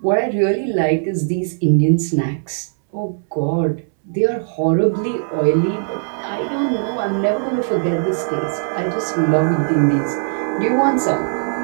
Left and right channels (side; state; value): left; silent; 66 dB below the other